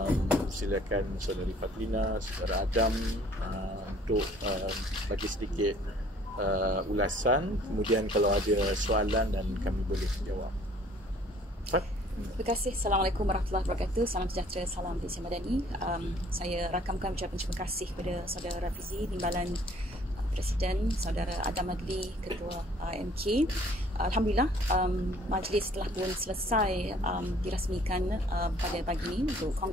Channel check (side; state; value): both; normal; correlation 0.56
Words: silakan Saudari Fatlina, Saudara Adam untuk bagi sedikit ulasan, kemudian kalau ada soalan dan kami boleh jawab. Terima kasih. Assalamualaikum warahmatullahi wabarakatuh. Salam sejahtera, salam Malaysia Madani. Saya rakamkan ucapan terima kasih kepada Saudara Rafizi, Timbalan Presiden, Saudara Adam Adli, Ketua MK. Alhamdulillah, majlis telah pun selesai dirasmikan pada pagi ini untuk